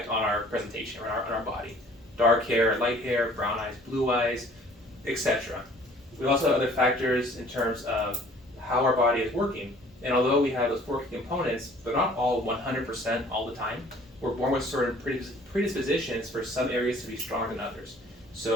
on our presentation, or on our body. Dark hair, light hair, brown eyes, blue eyes, etc. We also have other factors in terms of how our body is working. And although we have those four key components, they're not all 100% all the time. We're born with certain predispositions for some areas to be stronger than others.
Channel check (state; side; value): normal; both; correlation 0.53